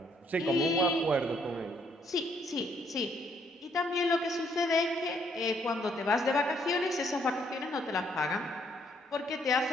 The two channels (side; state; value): both; normal; correlation 0.69